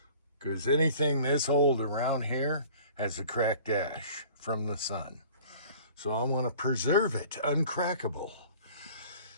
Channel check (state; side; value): inverted; both; correlation -0.47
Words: because anything this old around here has a cracked dash from the sun. So I want to preserve it uncrackable.